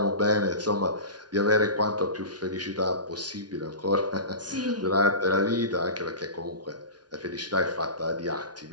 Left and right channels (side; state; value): left; late; 0.69 ms